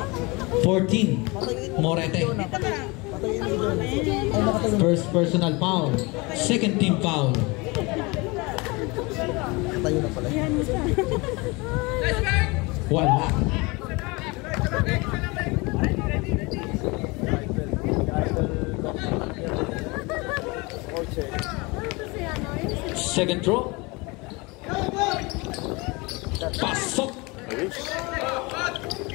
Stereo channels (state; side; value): quieter; right; 25.9 dB